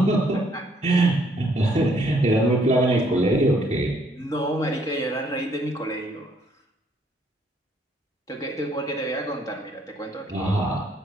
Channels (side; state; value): both; normal; correlation 0.67